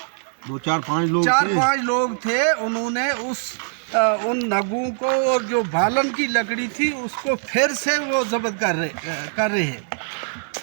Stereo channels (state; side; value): silent; left; digital silence